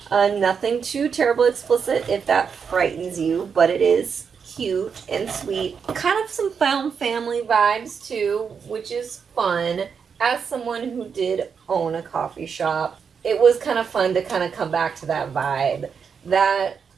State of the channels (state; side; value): quieter; left; 6.4 dB